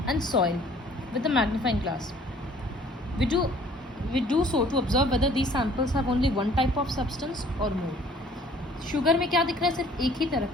and soil with the magnifying glass. We do so to observe whether these samples have only one type of substance or more. Sugar में क्या दिख रहा है? सिर्फ एक ही तरह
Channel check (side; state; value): both; normal; correlation 0.55